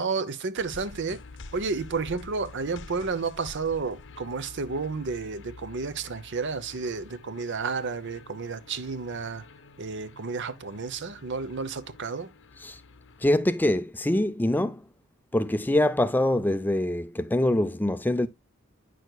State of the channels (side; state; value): both; normal; correlation 0.59